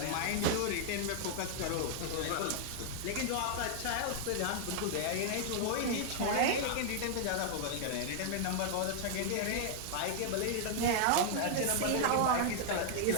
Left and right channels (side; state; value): both; different; correlation 0.00